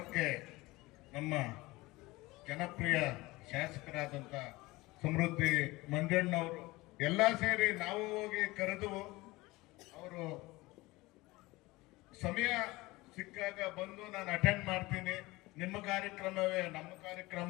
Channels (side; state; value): right; quieter; 21.0 dB